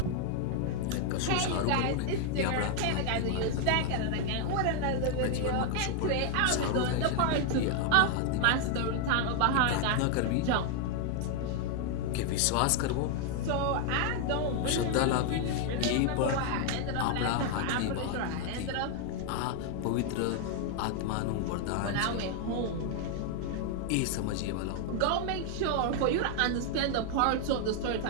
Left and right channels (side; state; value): both; different; correlation 0.00